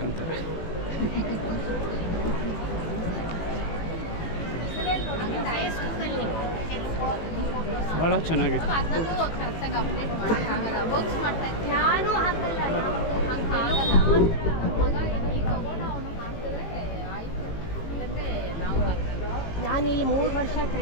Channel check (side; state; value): right; late; 18 ms